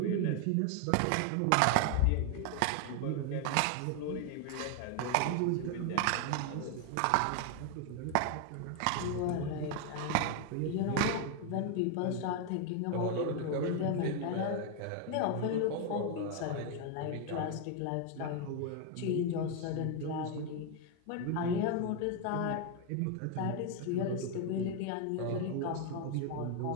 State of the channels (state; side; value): different; both; correlation 0.01